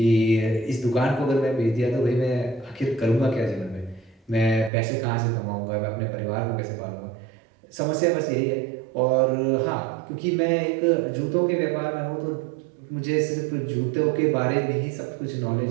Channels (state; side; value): drops out; left; at 4.7 s